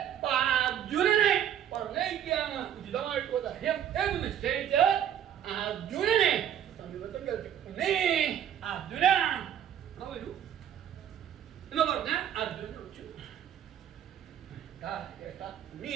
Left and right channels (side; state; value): left; quieter; 10.0 dB